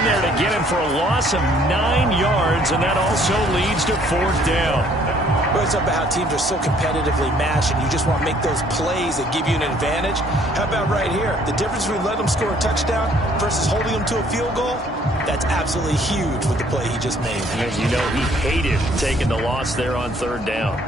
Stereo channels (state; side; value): normal; both; correlation 0.61